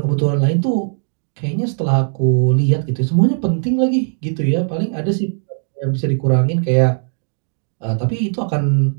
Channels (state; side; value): silent; left; digital silence